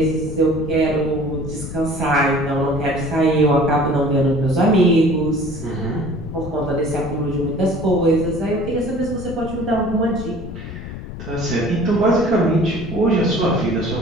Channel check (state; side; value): noise; left; rumble, 10 dB below the sound